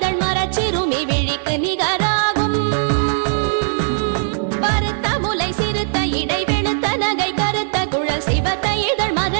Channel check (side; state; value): left; silent; 61 dB below the other